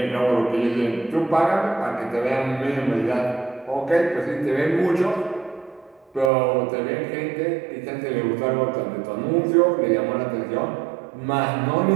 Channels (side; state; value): left; drops out; at 6.3 s